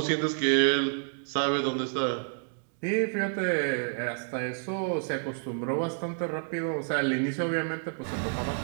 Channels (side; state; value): left; silent; digital silence